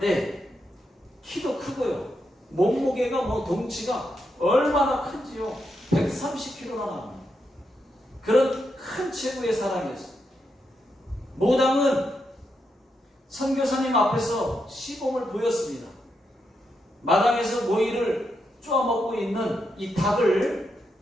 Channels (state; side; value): normal; both; correlation 0.83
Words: 키도 크고요. 몸무게가 덩치가 얼마나 큰지요. 130kg나 나갑니다. 그런 큰 체구의 사람이었어요. 무당은 선교사님 앞에서 시범을 보였습니다. 마당에서 모이를 쪼아먹고 있는 이 닭을